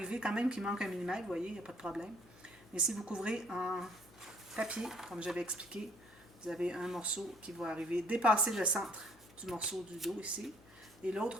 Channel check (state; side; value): noise; left; hum, 25 dB below the sound